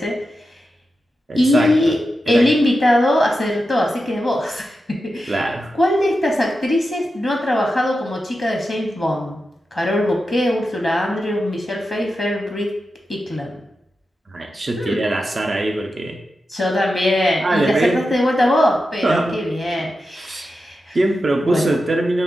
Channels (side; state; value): both; normal; correlation 0.90